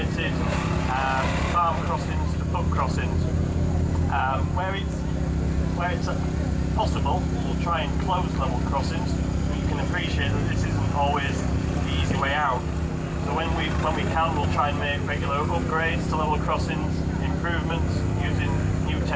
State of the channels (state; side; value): identical; both; correlation 1.00